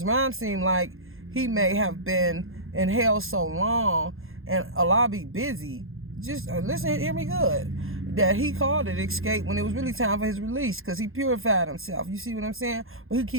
Ron seemed like he may have been in hell so long and Allah be busy. Just listen, hear me good. That he called it escape when it was really time for his release, because he purified himself. You see what I'm saying? But he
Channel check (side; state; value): left; late; 0.60 ms